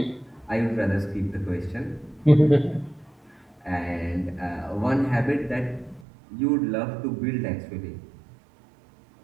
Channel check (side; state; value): left; drops out; at 6.1 s